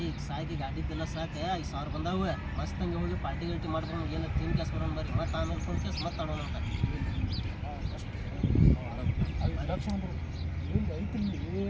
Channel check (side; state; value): both; identical; correlation 1.00